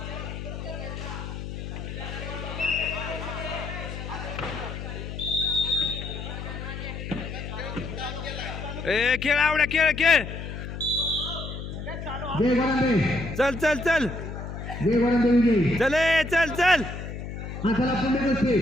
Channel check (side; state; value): left; noise; hum, 8 dB below the sound